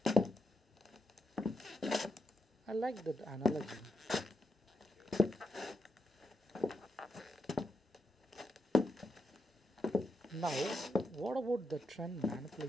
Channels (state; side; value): normal; both; correlation 0.84